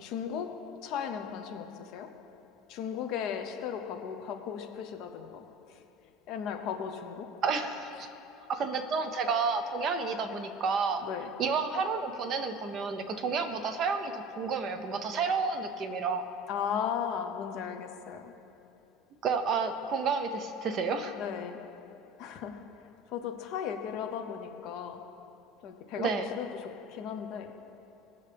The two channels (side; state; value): both; normal; correlation 0.37